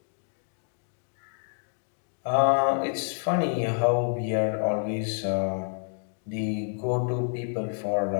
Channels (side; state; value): right; silent; 59 dB below the other